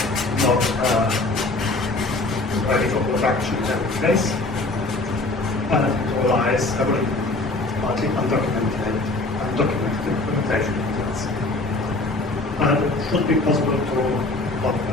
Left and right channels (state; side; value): quieter; right; 3.0 dB